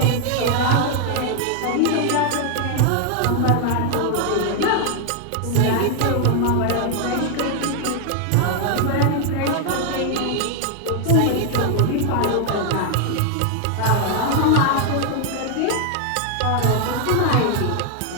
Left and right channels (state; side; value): different; both; correlation 0.00